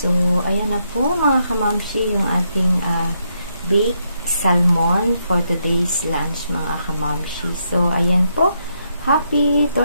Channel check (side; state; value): both; inverted; correlation -0.79